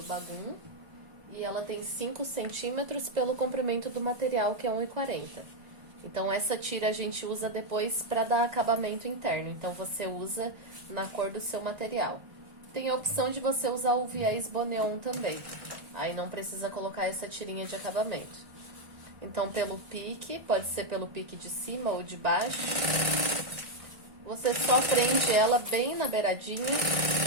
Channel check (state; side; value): late; left; 1.5 ms